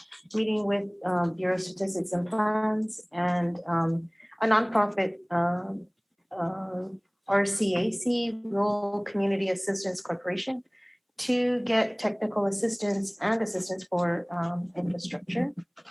meeting with Bureau of Statistics and Plans and a nonprofit, RCAC, Rural Community Assistance Corporation, to get technical assistance and assistance for infrastructure.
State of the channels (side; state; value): both; identical; correlation 1.00